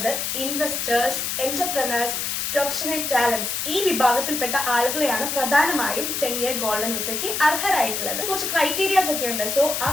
ഇൻവെസ്റ്റേഴ്സ്, എന്റർപ്രനേഴ്സ്, പ്രൊഫഷണൽ ടാലന്റ്സ് ഈ വിഭാഗത്തിൽപ്പെട്ട ആളുകളെയാണ് പ്രധാനമായും 10-year ഗോൾഡൻ വിസയ്ക്ക് അർഹരായിട്ടുള്ളത്. കുറച്ച് ക്രൈറ്റീരിയാസ് ഒക്കെ ഉണ്ട്. സോ ആ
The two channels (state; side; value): noise; left; hiss, 2 dB below the sound